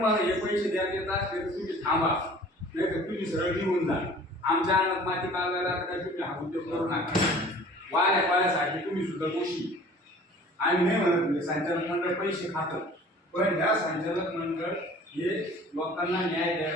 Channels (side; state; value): both; normal; correlation 0.48